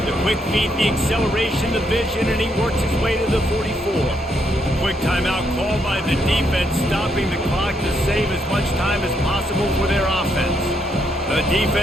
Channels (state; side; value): normal; both; correlation 0.76